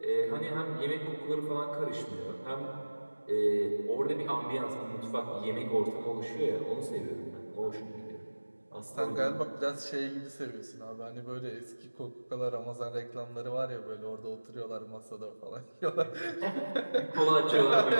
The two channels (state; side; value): inverted; both; correlation -1.00